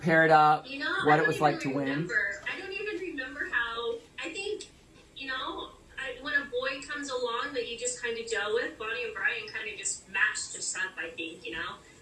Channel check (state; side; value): identical; both; correlation 1.00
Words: up, what it was like to win. I don't even remember how. I think, when a boy comes along that you just kind of gel with, Bonnie and Brian kind of just matched us up, I think,